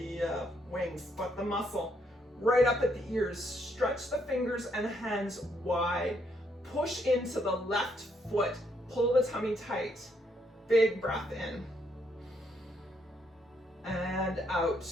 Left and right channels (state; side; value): normal; both; correlation 0.73